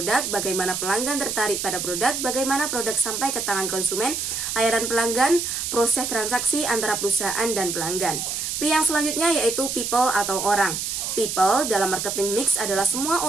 bagaimana pelanggan tertarik pada produk, bagaimana produk sampai ke tangan konsumen, layanan pelanggan, proses transaksi antara perusahaan dan pelanggan. P yang selanjutnya yaitu people atau orang. People dalam marketing mix adalah semua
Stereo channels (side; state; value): right; noise; hiss, 3 dB below the sound